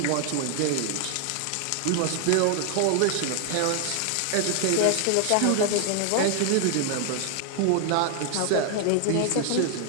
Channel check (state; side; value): different; both; correlation 0.00